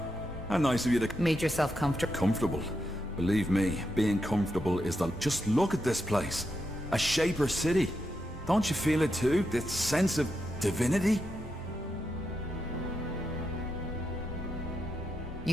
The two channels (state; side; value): normal; both; correlation 0.84